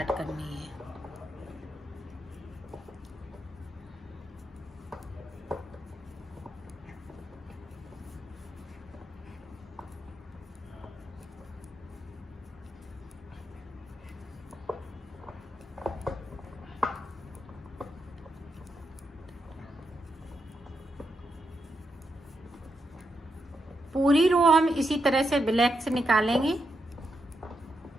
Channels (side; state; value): both; normal; correlation 0.83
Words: करनी है। पूरी रो हम इसी तरह से ब्लैक से निकालेंगे